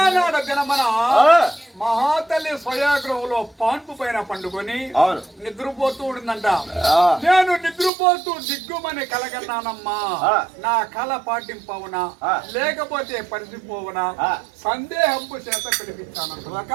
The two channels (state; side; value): drops out; left; at 7.9 s